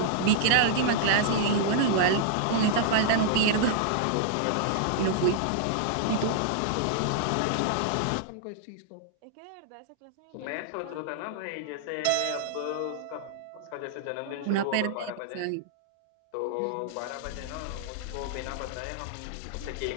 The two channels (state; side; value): different; both; correlation -0.01